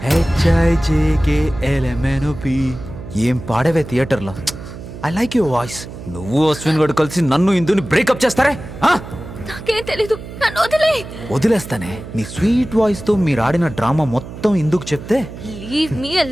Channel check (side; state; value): right; noise; hum, 12 dB below the sound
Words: ఏం పాడవే థియేటర్లో. I like your voice. నువ్వు అశ్విన్ గడు కలిసి నన్ను ఇందుని బ్రేకప్ చేస్తారే? నాకేం తెలీదు, నన్ను వదిలే. వదిలేస్తానే. నీ స్వీట్ వాయిస్ తో మీరు ఆడిన డ్రామా మొత్తం ఇందుకు చెప్తే లీవ్ మీ